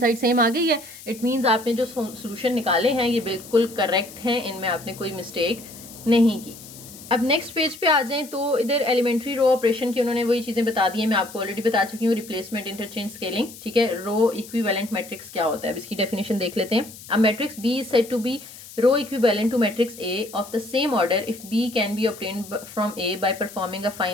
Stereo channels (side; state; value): left; noise; hiss, 17 dB below the sound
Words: side same आ गई है। इट मीन्स आपने जो सोल्यूशन निकाले हैं ये बिल्कुल करेक्ट हैं, इनमें आपने कोई मिस्टेक नहीं की। अब नेक्स्ट पेज पे आ जाएं तो इधर एलिमेंट्री रो ऑपरेशन की उन्होंने वही चीज़ें बता दी हैं, मैं आपको ऑलरेडी बता चुकी हूँ, रिप्लेसमेंट इंटरचेंज स्केलिंग, ठीक है। रो इक्विवेलेंट मैट्रिक्स क्या होता है अब इसकी डेफिनेशन देख लेते हैं। अब matrix B is said to be row equivalent to matrix A of the same order if B can be obtained from A by performing a